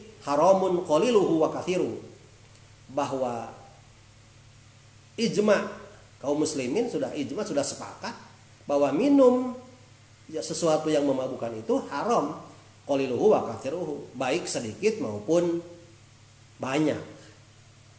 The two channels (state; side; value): identical; both; correlation 1.00